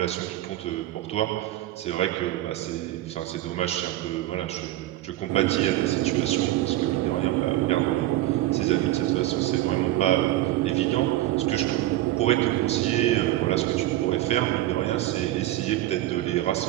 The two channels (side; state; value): left; quieter; 15.3 dB